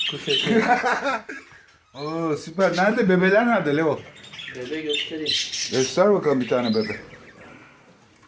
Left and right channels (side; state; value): both; identical; correlation 1.00